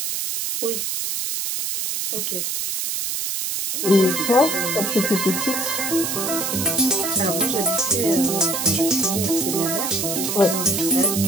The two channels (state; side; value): noise; right; hiss, 2 dB below the sound